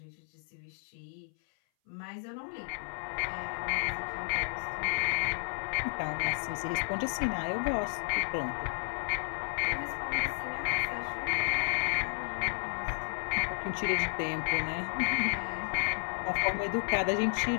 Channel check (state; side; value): silent; right; 56 dB below the other